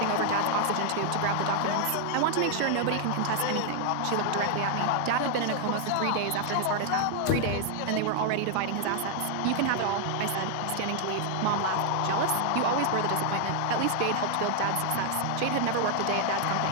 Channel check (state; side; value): different; both; correlation 0.00